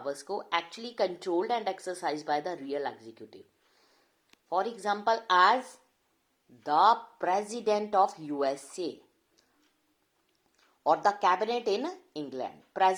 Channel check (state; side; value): identical; both; correlation 1.00